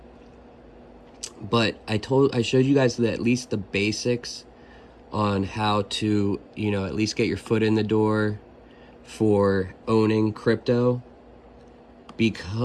But I showed you guys at least the basics on how to, at least get your foot in the door for owning crypto,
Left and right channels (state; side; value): identical; both; correlation 1.00